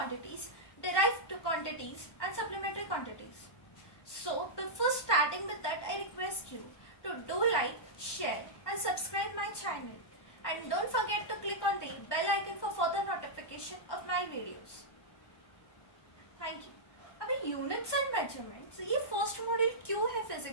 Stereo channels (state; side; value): late; right; 1.1 ms